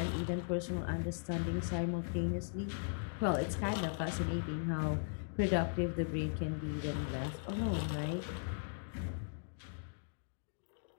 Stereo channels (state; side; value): silent; right; digital silence